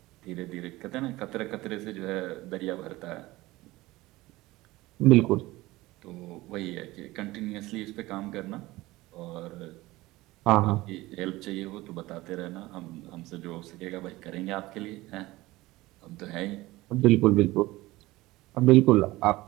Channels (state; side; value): quieter; left; 19.1 dB